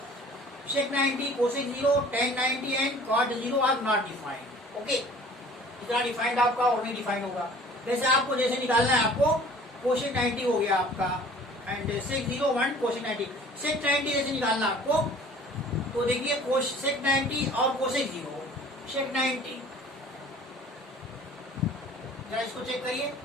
90, cosec 0, tan 90 and cot 0 are not defined. Okay, इतना डिफाइंड आपका और नहीं डिफाइंड होगा। जैसे आपको जैसे निकालना है, आपको cosec 90 हो गया आपका एंड sec 0 1 cosec 90, sec 90 जैसे निकालना आपको, तो देखिए sec 90 और cosec 0, sec 90 जरा इसको चेक करिए,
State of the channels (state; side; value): normal; both; correlation 0.49